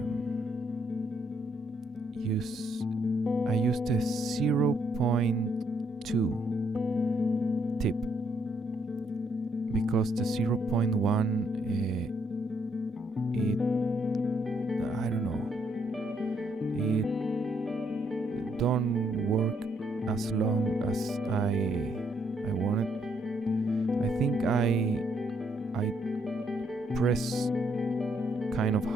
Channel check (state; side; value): normal; both; correlation 0.72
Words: I used a 0.2 tip because the 0.1 it don't work as long as I wanted. I think I press kind of